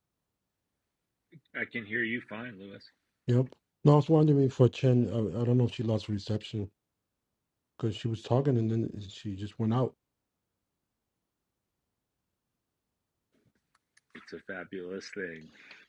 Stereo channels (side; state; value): both; identical; correlation 1.00